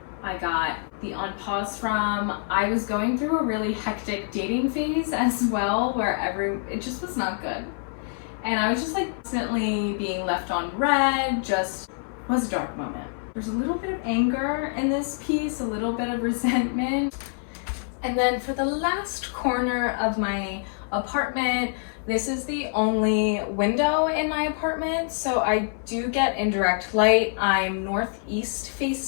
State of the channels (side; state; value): right; silent; 61 dB below the other